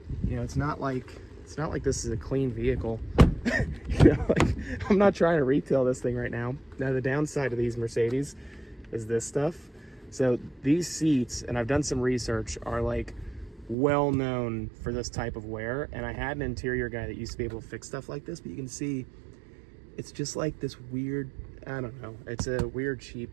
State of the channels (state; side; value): drops out; left; at 13.8 s